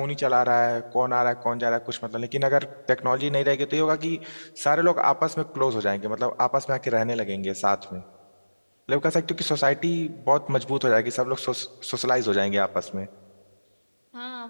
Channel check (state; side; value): inverted; both; correlation -1.00